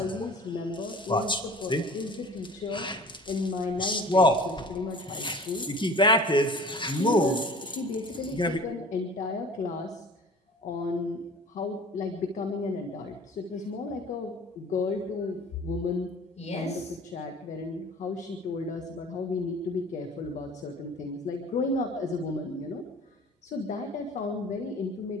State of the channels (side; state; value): both; normal; correlation 0.43